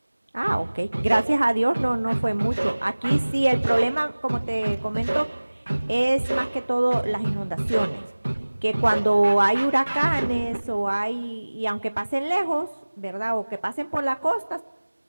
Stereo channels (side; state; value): both; inverted; correlation -1.00